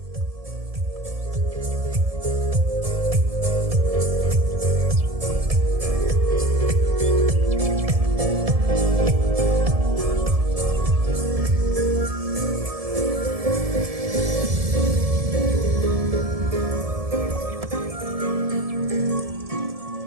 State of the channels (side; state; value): left; late; 1.7 ms